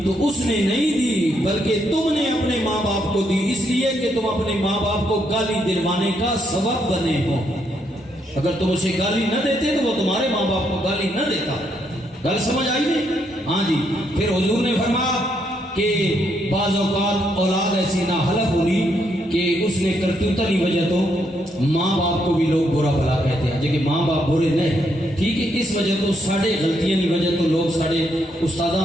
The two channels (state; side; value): normal; both; correlation 0.76